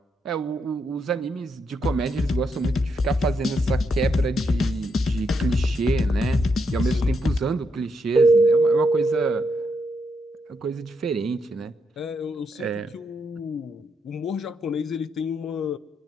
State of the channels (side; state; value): both; normal; correlation 0.79